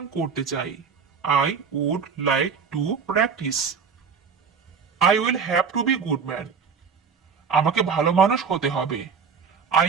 করতে চাই। I would like to practice. I will have to be good man. আমাকে ভালো মানুষ হতে হবে। I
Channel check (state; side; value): quieter; left; 6.0 dB